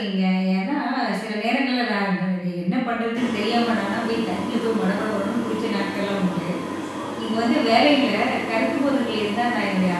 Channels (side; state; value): both; identical; correlation 1.00